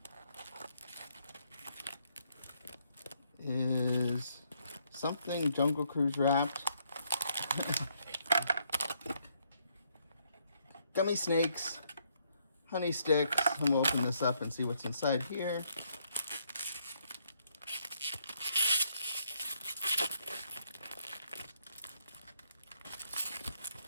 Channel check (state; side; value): inverted; both; correlation -0.72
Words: is something Jungle Cruise wrapped. Gummy snakes, honey sticks, and we'll open this up and see what's inside here.